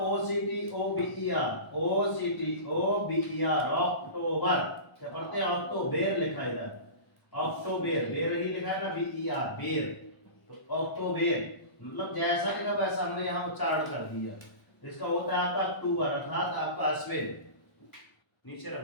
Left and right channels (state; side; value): late; right; 1.0 ms